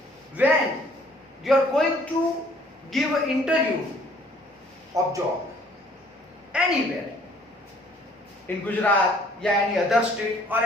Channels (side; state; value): both; normal; correlation 0.59